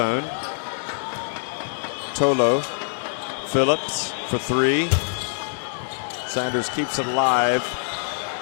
Tolo, Phillips for three. Sanders keeps it alive.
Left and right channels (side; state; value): right; silent; digital silence